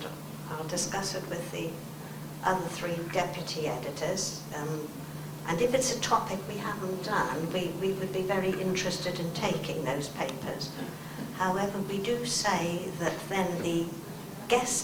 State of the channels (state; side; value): identical; both; correlation 1.00